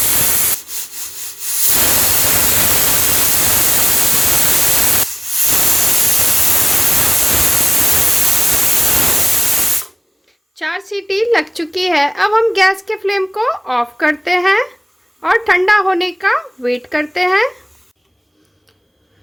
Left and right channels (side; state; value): both; identical; correlation 1.00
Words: चार सीटी लग चुकी है। अब हम गैस के फ्लेम को ऑफ करते हैं और ठंडा होने का वेट करते हैं।